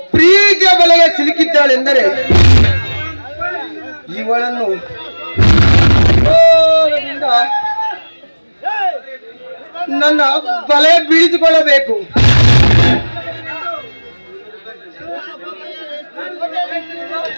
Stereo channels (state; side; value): inverted; both; correlation -1.00